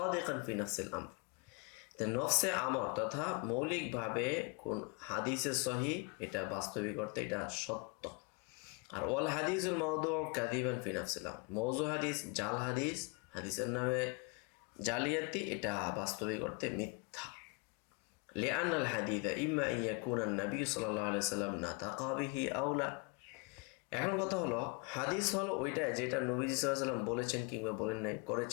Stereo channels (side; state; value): right; quieter; 29.6 dB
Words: ফি নাফসিল আমর। তো নফসে আমর তথা মৌলিকভাবে কোন হাদিসে সহি এটা বাস্তবিক অর্থে এটা সত্য। আর ওয়াল হাদিসুল মাওদু কাযিবান ফি নাফসিল আমর, মওযু হাদিস, জাল হাদিস, হাদিসের নামে জালিয়াতি, এটা বাস্তবিক অর্থে মিথ্যা। লিআন আল হাদিসা ইম্মা আন ইয়াকুনা নবী সাল্লাল্লাহু আলাইহি সাল্লাম নাতাকা বিহি আও লা। এখন কথা হলো, হাদিস হলো ওইটা যেটা নবীজি সাল্লাল্লাহু আলাইহি সাল্লাম বলেছেন কিংবা বলেন নাই,